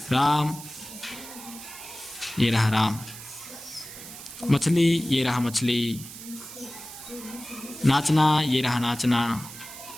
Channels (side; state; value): right; noise; hiss, 13 dB below the sound